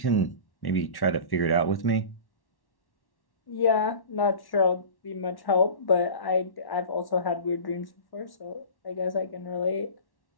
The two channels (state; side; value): late; right; 1.1 ms